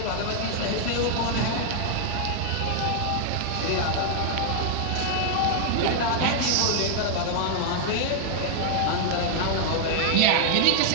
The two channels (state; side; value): different; both; correlation 0.00